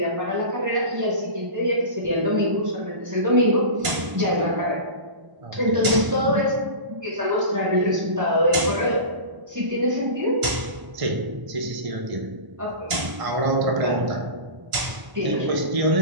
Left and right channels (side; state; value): left; late; 1.0 ms